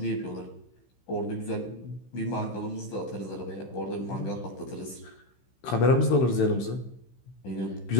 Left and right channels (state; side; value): late; right; 15 ms